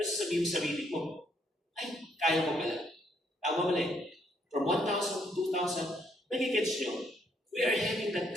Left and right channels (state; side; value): normal; both; correlation 0.71